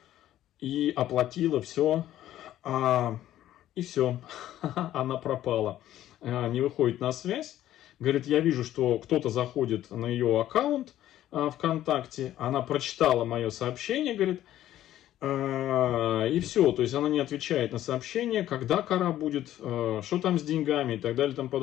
и оплатила все. И все, она пропала, не выходит на связь. Говорит, я вижу, что кто-то заходит на ее аккаунт ВКонтакте, она прочитала мое сообщение, говорит, и все, то есть она не отвечает на сообщение, когда кора будет, что там с деньгами и так далее и тому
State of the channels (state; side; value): quieter; right; 12.9 dB